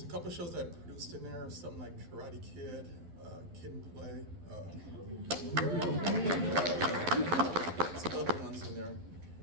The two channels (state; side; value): late; left; 12 ms